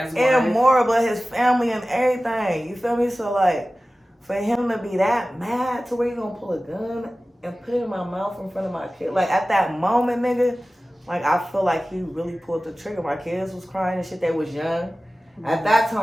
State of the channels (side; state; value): both; normal; correlation 0.96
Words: wife. And more, but his family and everything. You feel me? So like, for him to be that mad to where you gonna pull a gun and put it in my mouth in front of my kid, like at that moment, nigga, like I feel like he really pulled the trigger. My kids was crying and shit, they was young. At that